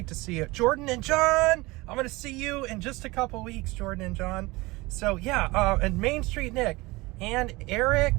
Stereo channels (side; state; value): left; quieter; 22.2 dB